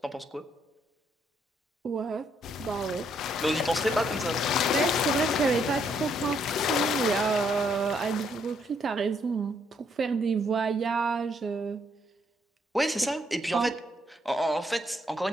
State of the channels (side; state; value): both; normal; correlation 0.72